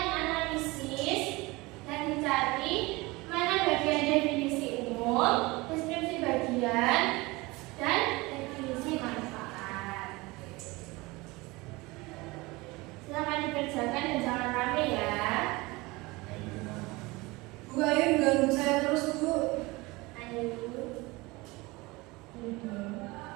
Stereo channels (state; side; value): quieter; left; 22.8 dB